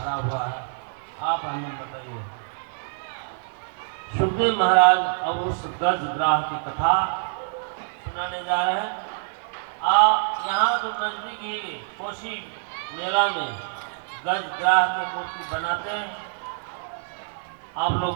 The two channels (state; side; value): silent; left; digital silence